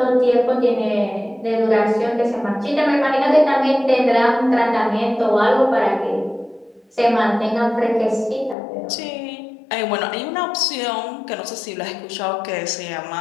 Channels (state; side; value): drops out; right; at 8.6 s